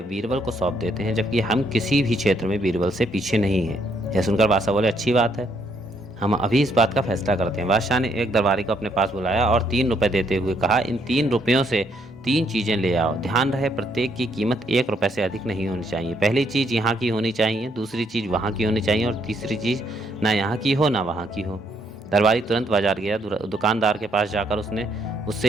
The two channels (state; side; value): normal; both; correlation 0.71